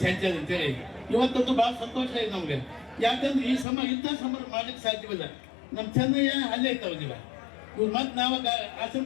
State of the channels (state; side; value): drops out; right; at 3.7 s